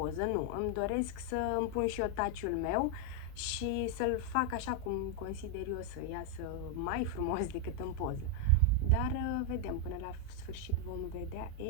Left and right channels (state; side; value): different; both; correlation 0.00